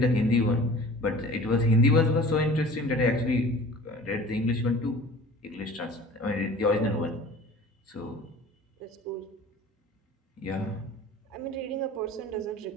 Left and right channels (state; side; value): normal; both; correlation 0.43